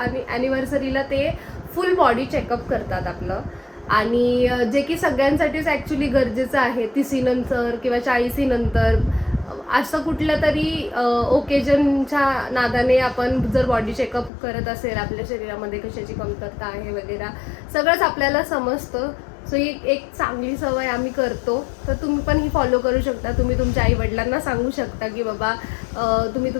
ॲनिव्हर्सरीला ते फुल बॉडी चेकअप करतात आपलं आणि जे की सगळ्यांसाठीच ॲक्च्युली गरजेचं आहे 30 नंतर किंवा 40 नंतर असं कुठलं तरी ओकेजनच्या नादाने आपण जर बॉडी चेकअप करत असेल आपल्या शरीरामध्ये कशाची कमतरता आहे वगैरे सगळंच आपल्याला समजतं सो ही एक चांगली सवय आम्ही करतो. तर तुम्ही पण ही फॉलो करू शकता. तुम्ही तुमच्या आईवडिलांना सांगू शकता की बाबा तुम्ही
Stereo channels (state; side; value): drops out; right; at 14.3 s